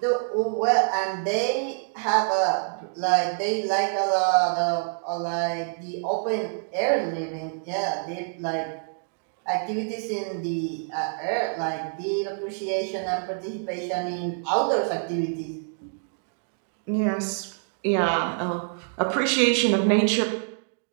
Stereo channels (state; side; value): silent; left; digital silence